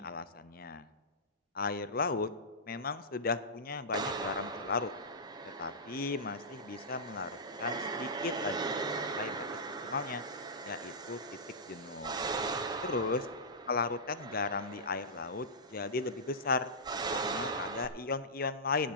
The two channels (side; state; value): both; normal; correlation -0.15